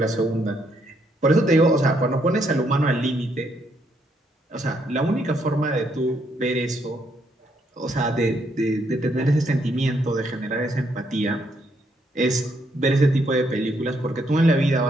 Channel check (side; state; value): both; normal; correlation 0.74